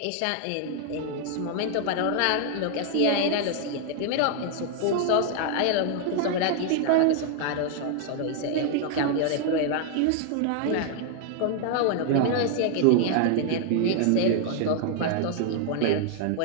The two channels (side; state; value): both; different; correlation 0.00